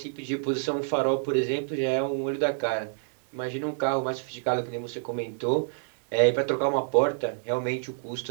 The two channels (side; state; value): left; silent; digital silence